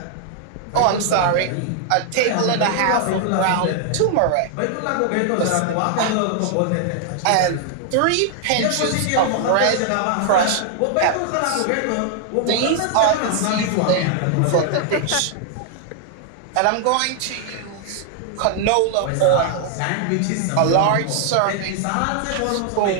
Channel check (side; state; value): both; different; correlation 0.00